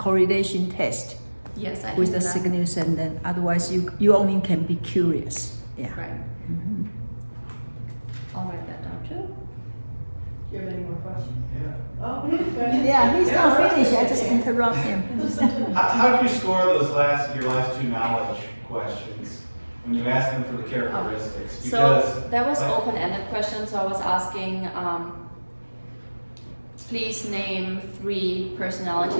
test Yes, I can with do the that. signals, and then otherwise you only can be curious. Yeah. Right. Mhm. I'll write that down too. Do you have any more questions? Yeah. Oh, go ahead. Yeah, he's not Yeah, finished. I okay. just interrupt him. How do you score your last two knowledge questions when you ask them for the characteristics? Because So that was like- open-ended question, so I was asking, please name 3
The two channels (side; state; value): both; inverted; correlation -1.00